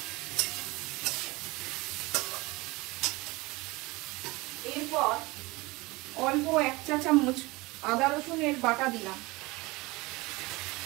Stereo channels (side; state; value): left; quieter; 22.7 dB